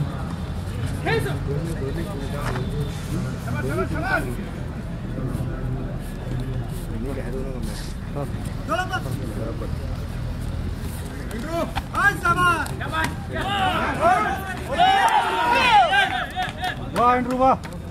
वाह इंद्रू वाह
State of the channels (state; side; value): identical; both; correlation 1.00